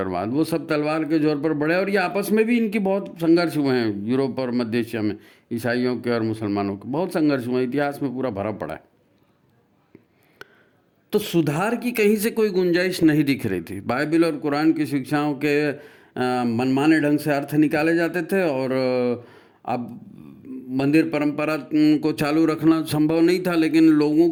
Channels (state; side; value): identical; both; correlation 1.00